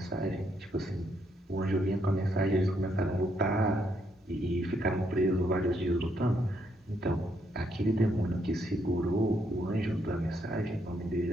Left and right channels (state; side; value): normal; both; correlation 0.75